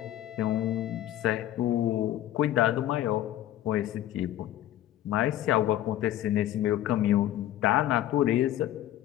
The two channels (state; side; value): quieter; right; 12.9 dB